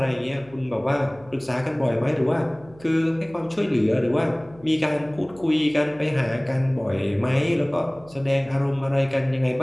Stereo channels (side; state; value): right; noise; hum, 24 dB below the sound